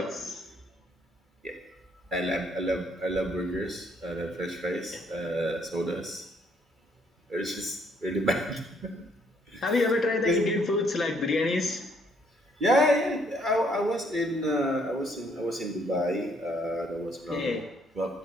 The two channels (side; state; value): both; normal; correlation 0.68